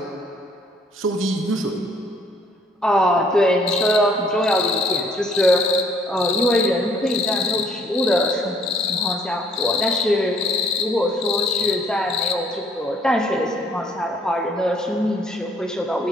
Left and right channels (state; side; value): normal; both; correlation 0.62